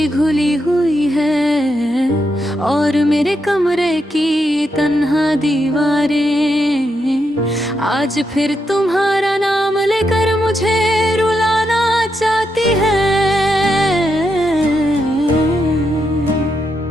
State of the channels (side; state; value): both; normal; correlation 0.82